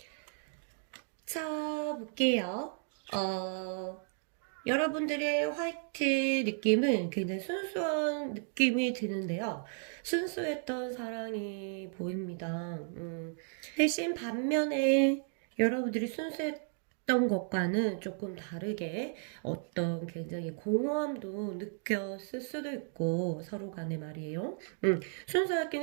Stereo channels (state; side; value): silent; left; 55 dB below the other